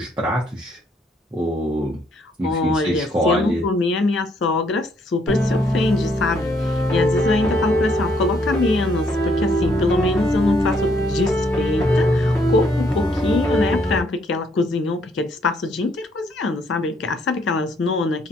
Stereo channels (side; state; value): both; normal; correlation 0.70